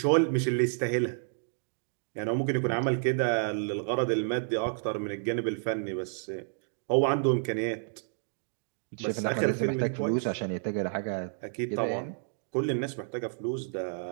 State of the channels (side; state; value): left; silent; digital silence